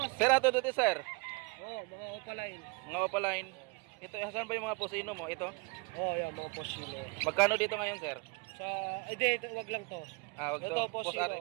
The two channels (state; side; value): quieter; left; 30.2 dB